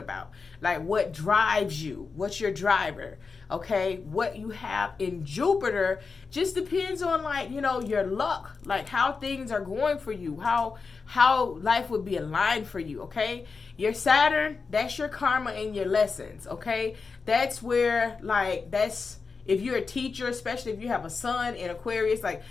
like what drives you, what's your driver. Okay, what you have in Jupiter just depends on, like, you know, your luck, like how things are going for you, how life would be aligned for you. Okay, your Saturn, that's your karma and your lessons. Okay, that's where, like, that's if you're a teacher, especially if you have a sun in Aquarius, like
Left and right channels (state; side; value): quieter; right; 4.8 dB